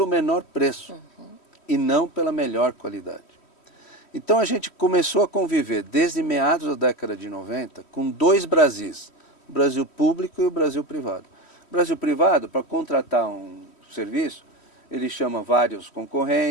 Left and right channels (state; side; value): late; right; 3.1 ms